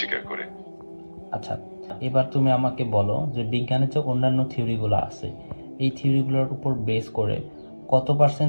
করে। আচ্ছা, এবার তুমি আমাকে বলো যে বিজ্ঞানের যে অন্যান্য থিওরিগুলো আছে, এই থিওরিগুলোর উপর বেস করে কত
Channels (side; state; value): both; inverted; correlation -1.00